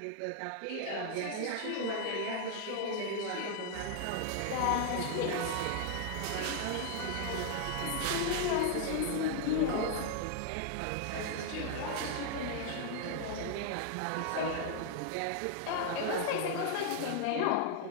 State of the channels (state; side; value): different; both; correlation 0.00